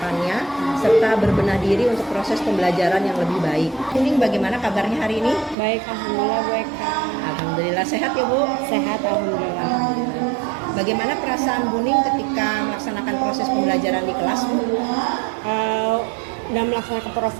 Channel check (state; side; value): drops out; left; at 5.6 s